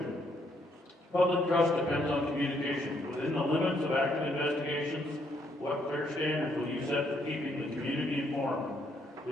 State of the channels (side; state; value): both; normal; correlation 0.71